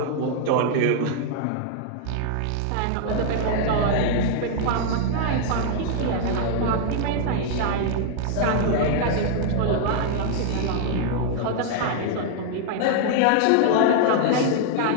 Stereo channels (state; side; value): different; both; correlation -0.01